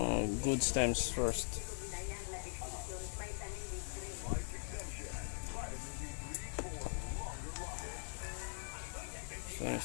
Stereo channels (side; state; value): right; silent; digital silence